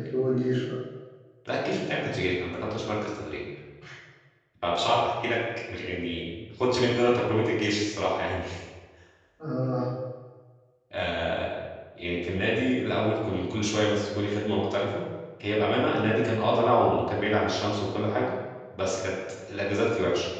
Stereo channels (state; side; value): identical; both; correlation 1.00